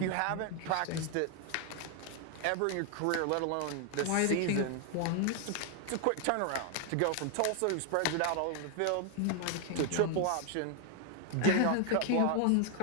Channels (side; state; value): both; different; correlation 0.01